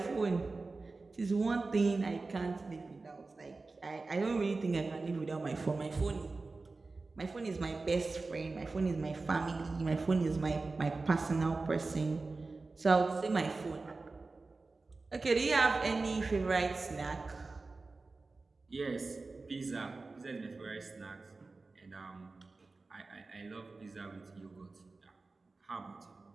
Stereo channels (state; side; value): quieter; left; 3.7 dB